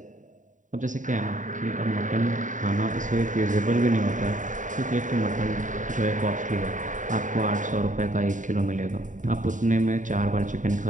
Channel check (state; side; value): late; left; 0.37 ms